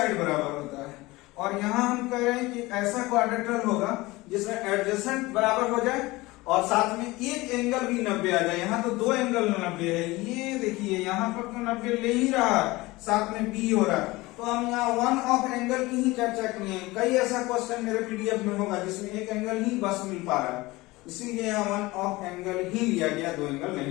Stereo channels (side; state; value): right; quieter; 20.8 dB